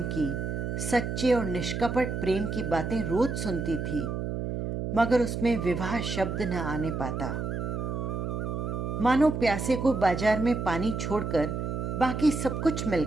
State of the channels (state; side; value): noise; right; hum, 3 dB below the sound